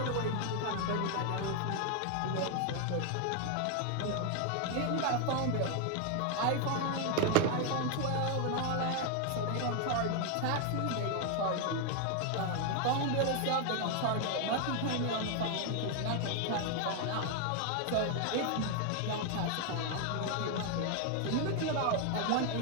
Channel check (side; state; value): both; different; correlation 0.01